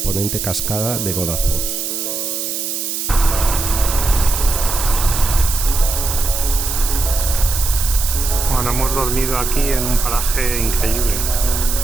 cascada de Godafoss. Bueno, hemos dormido aquí en un paraje increíble.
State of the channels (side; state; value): right; noise; hiss, 3 dB below the sound